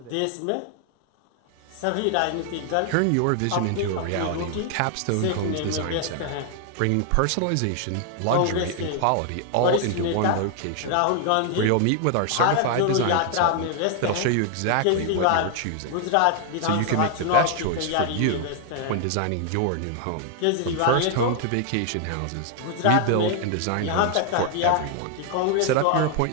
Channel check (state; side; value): different; both; correlation 0.00